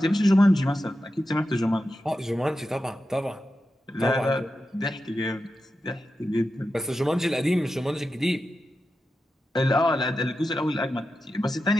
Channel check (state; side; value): normal; both; correlation 0.90